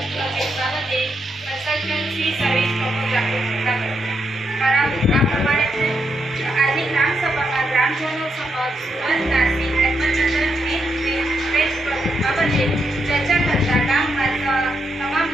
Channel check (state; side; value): normal; both; correlation 0.81